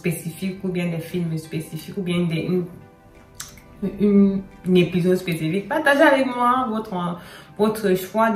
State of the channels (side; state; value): both; identical; correlation 1.00